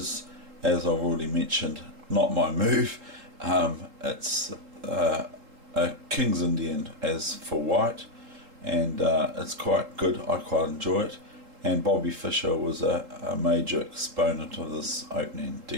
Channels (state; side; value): late; left; 3.8 ms